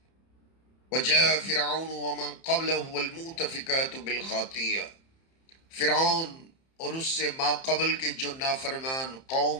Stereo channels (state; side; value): late; right; 30 ms